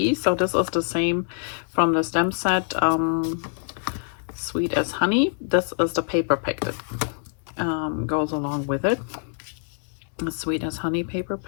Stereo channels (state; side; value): silent; right; 62 dB below the other